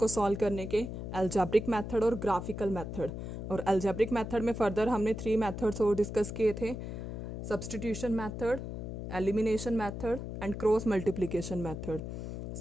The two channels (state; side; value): noise; left; hum, 6 dB below the sound